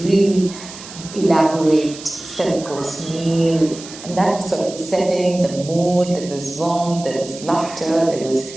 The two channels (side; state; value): right; noise; hiss, 15 dB below the sound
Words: really elaborate 7-course meal, and that was sort of setting the mood. There was warmth, there was laughter, there was